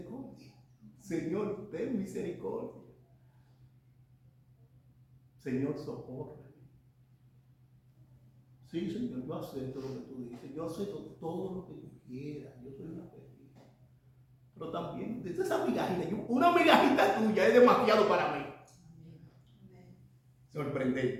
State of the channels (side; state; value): both; identical; correlation 1.00